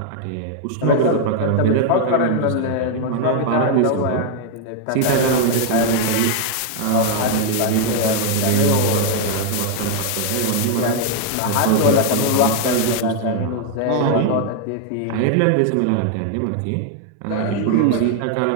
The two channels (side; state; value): both; different; correlation 0.00